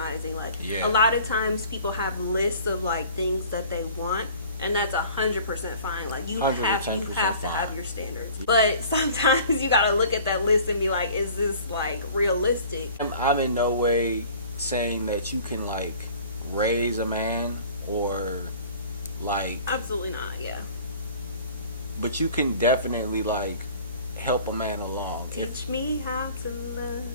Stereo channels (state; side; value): inverted; both; correlation -0.48